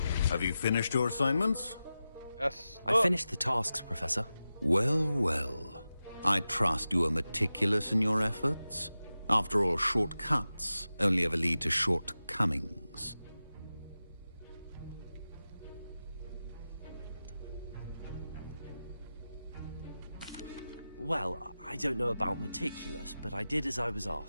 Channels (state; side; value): inverted; both; correlation -0.93